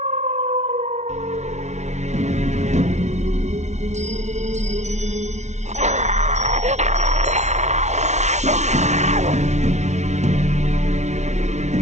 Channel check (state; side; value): late; left; 0.33 ms